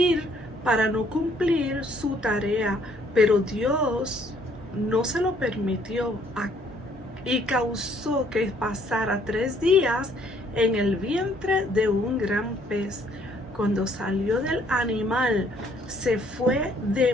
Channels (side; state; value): both; normal; correlation 0.64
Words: para no cumplir su tarea, pero Dios no se lo permitió y causó que pasara 3 días en el vientre de un gran pez. Cuando salió del animal, se fue de